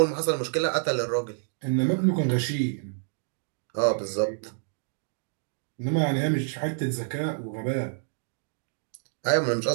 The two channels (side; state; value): left; silent; digital silence